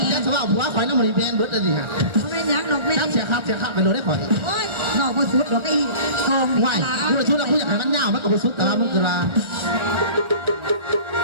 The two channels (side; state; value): left; late; 1.8 ms